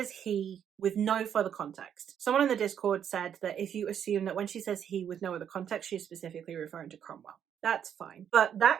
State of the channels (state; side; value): quieter; left; 8.8 dB